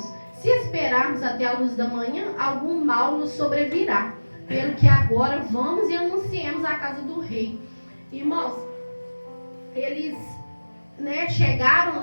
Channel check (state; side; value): inverted; both; correlation -1.00